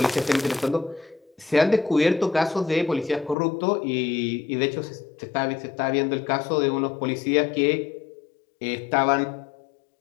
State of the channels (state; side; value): drops out; right; at 3.4 s